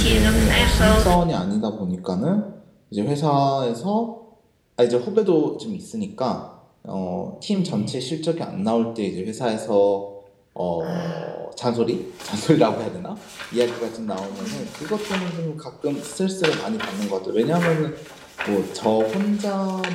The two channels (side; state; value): both; identical; correlation 1.00